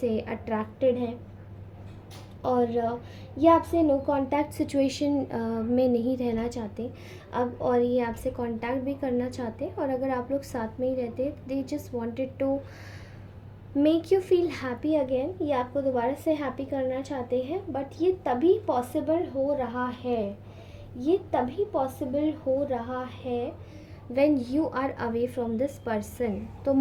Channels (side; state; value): both; identical; correlation 1.00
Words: अट्रैक्टेड है, और ये आपसे नो कांटेक्ट सिचुएशन में नहीं रहना चाहते अब, और ये आपसे कांटेक्ट भी करना चाहते, और अगर आप लोग साथ में ही रहते, they just wanted to make you feel happy again. ये आपको दोबारा से हैप्पी करना चाहते हैं, बट ये तभी पॉसिबल हो रहा है, ये तभी पॉसिबल हो रहा है when you are away from this person। तो